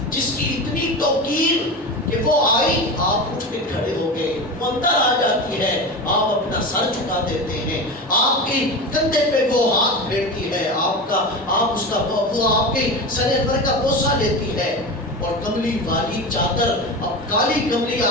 جس کی اتنی توقیر کہ وہ آئی، آپ اٹھ کے کھڑے ہو گئے، وہ اندر آ جاتی ہے، آپ اپنا سر جھکا دیتے ہیں، آپ کے کندھے پہ وہ ہاتھ پھیرتی ہے، وہ آپ کے سر پر کا بوسہ لیتی ہے، اور کملی والی چادر، اب کالی کملی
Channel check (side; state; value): both; normal; correlation 0.26